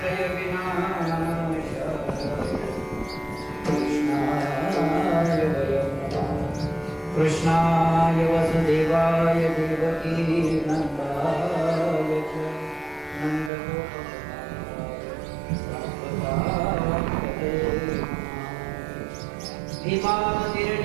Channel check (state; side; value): drops out; left; at 13.5 s